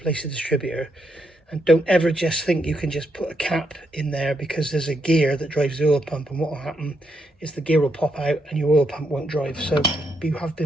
the distributor. And don't ever just think you can just put a cap in there, because there's a gear that drives the oil pump, and what will happen is the gear will pop out and your oil pump won't drive. So you have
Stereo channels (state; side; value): normal; both; correlation 0.79